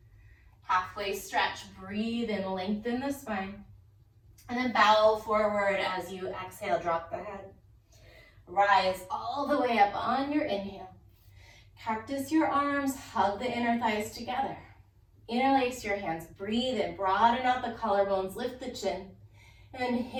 Halfway stretch, breathe in, lengthen the spine. And then bow forward as you exhale, drop the head. Rise all the way up on your inhale. Cactus your arms, hug the inner thighs together. Interlace your hands, breathe in, broaden out the collarbones, lift the chin, and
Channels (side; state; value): both; identical; correlation 1.00